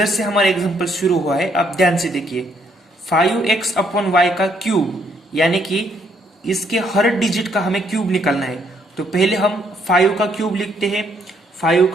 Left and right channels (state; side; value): normal; both; correlation 0.70